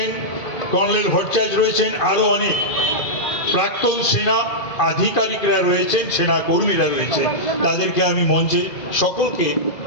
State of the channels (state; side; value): late; right; 2.5 ms